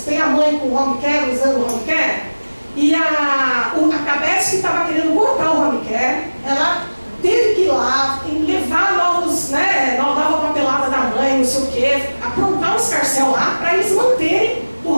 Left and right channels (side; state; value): both; inverted; correlation -1.00